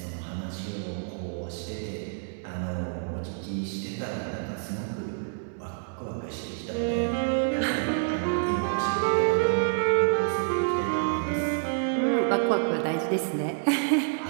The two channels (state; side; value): silent; left; digital silence